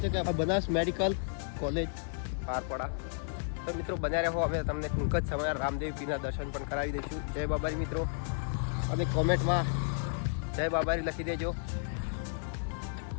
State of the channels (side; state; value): right; silent; digital silence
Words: છો કે બનાસ મેડિકલ કોલેજ પારપડા। તો મિત્રો બન્યા રહો, હવે તમને ટૂંક જ સમય રામદેવ પીરના દર્શન પણ કરાવી દઈશું। જય બાબારી મિત્રો, અને કોમેન્ટમાં જય બાબારી લખી દેજો।